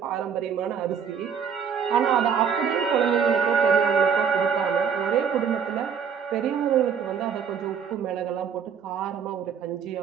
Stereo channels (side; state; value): left; quieter; 7.0 dB